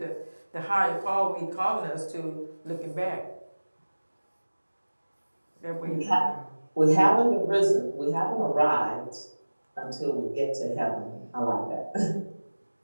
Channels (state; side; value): inverted; both; correlation -1.00